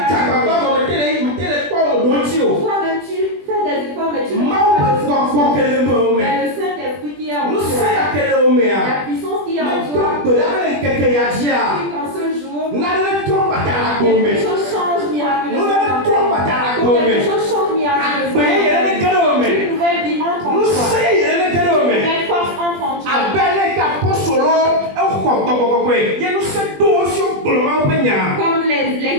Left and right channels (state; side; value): late; left; 20 ms